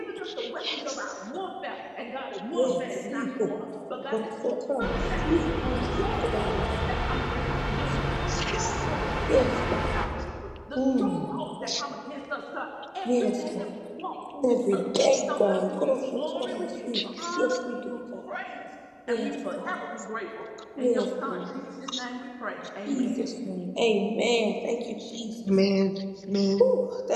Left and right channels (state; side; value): identical; both; correlation 1.00